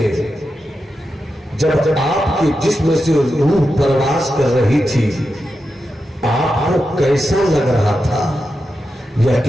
جب آپ کے جسم سے روح پرواز کر رہی تھی، آپ کو کیسا لگ رہا تھا؟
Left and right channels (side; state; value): both; normal; correlation 0.89